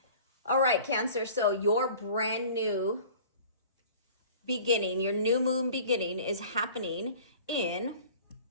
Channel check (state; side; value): inverted; both; correlation -0.45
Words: All right, Cancer, so your brand new beginning, your new moon beginning is happening in